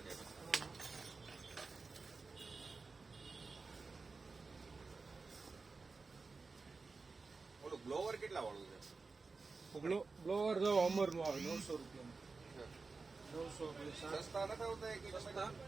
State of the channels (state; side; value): quieter; left; 4.2 dB